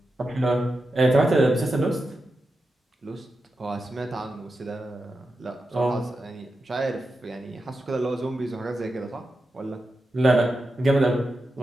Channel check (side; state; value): both; normal; correlation 0.89